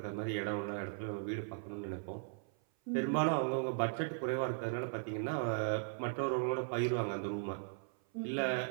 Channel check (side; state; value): left; silent; 53 dB below the other